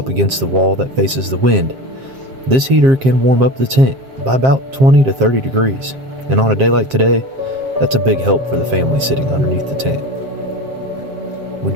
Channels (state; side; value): late; left; 7.5 ms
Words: against the wall that faces the wind, this heater can warm up the tent by about 20 to 30 degrees. And on a day like today, that's a big help for the family sitting underneath the tent. We